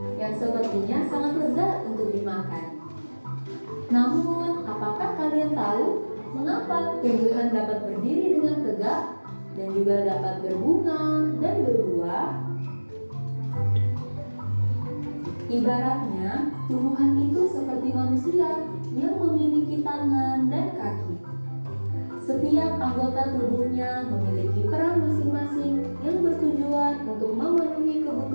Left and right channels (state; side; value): inverted; both; correlation -1.00